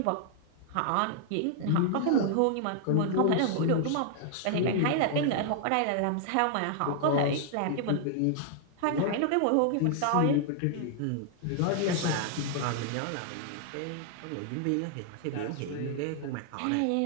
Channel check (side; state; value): both; different; correlation 0.00